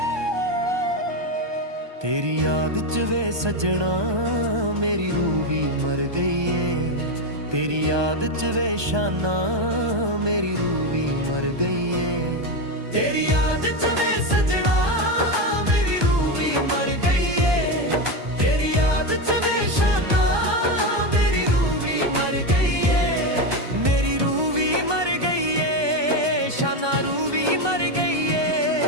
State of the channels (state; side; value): late; left; 1.2 ms